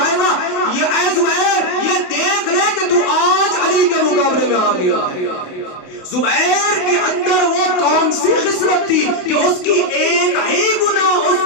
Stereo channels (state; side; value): late; right; 28 ms